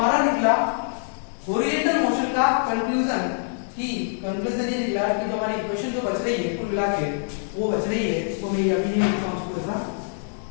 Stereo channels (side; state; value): right; silent; digital silence